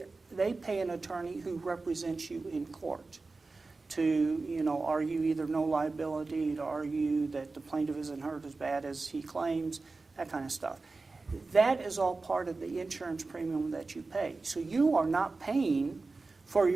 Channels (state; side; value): quieter; left; 3.7 dB